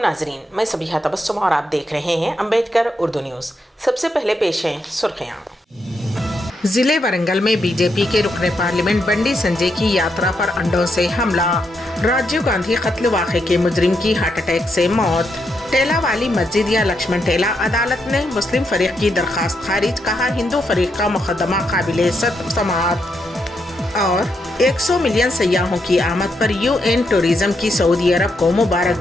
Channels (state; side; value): normal; both; correlation 0.80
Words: मैं सबिहा तबस्सुम और आप देख रहे हैं अम्बेडकर उर्दू न्यूज़। सबसे पहले पेश हैं सुर्खियाँ। जिले वरंगल में बीजेपी के रुकने पार्लियामेंट बंडी संजय की यात्रा पर अंडों से हमला। राजीव गांधी कत्ल वाक़े के मुजरिम की हार्ट अटैक से मौत। टेला वाली मस्जिद या लक्ष्मण टेला, अदालत ने मुस्लिम फरीक की दरखास्त खारिज, कहा हिंदू फरीक का मुकदमा काबिले समाअत। और 100 मिलियन सयाहों की आमद पर UN टूरिज्म की सऊदी अरब को